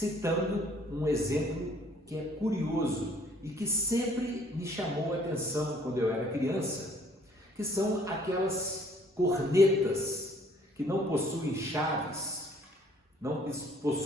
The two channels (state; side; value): normal; both; correlation 0.60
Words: um exemplo que é curioso e que sempre me chamou a atenção quando eu era criança, que são aquelas cornetas que não possuem chaves, não